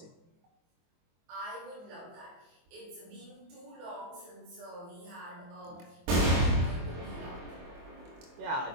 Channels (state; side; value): late; left; 24 ms